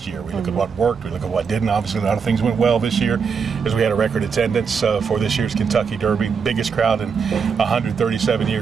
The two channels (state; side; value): quieter; left; 6.0 dB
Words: year. We look at what worked, we look at what didn't. Obviously, a lot of things went well this year, as we had a record attendance for this year's Kentucky Derby, biggest crowd in 137